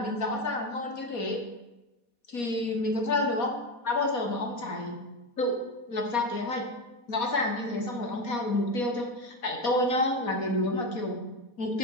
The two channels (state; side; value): late; right; 4.2 ms